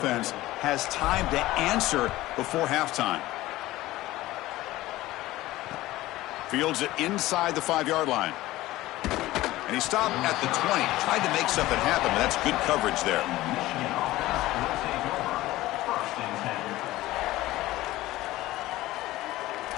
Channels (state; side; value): quieter; right; 17.1 dB